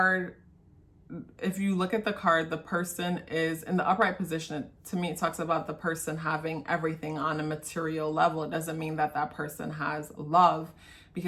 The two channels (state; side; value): identical; both; correlation 1.00